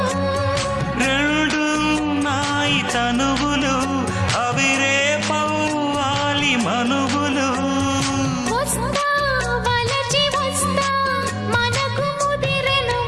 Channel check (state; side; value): identical; both; correlation 1.00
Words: రెండు నాయి తనువులు అవి రేపవ్వాలి మనువులు